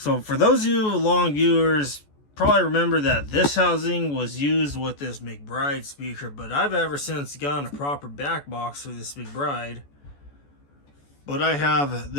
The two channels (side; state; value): right; late; 14 ms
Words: for those of you long viewers, probably remember that this housing was used with this McBride speaker, but I've ever since gotten a proper back box for this McBride. But I have